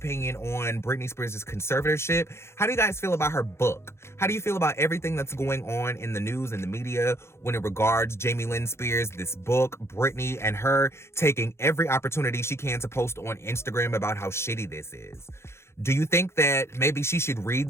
on Britney Spears' conservatorship? How do you guys feel about her book? How do you feel about everything that's going on in the news and the media when it regards Jamie Lynn Spears, this book, Britney, and her taking every opportunity she can to post on Instagram about how shitty this is? Do you think that maybe she should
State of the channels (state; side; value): late; right; 0.13 ms